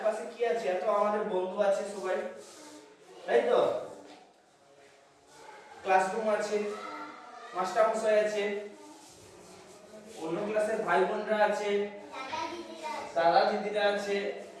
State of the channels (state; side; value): identical; both; correlation 1.00